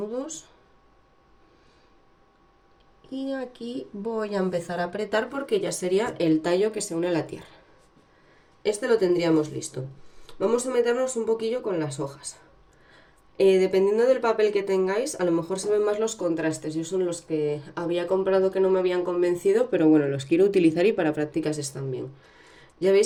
Y aquí voy a empezar a apretar porque ya sería el tallo que se une a la tierra. Este lo tendríamos listo. Vamos a meternos un poquillo con las hojas. Dependiendo del papel que tengáis, a lo mejor se ven más los contrastes. Yo son los que había comprado que no me habían convencido, pero bueno, los quiero utilizar y para prácticas están bien. Ya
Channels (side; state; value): both; identical; correlation 1.00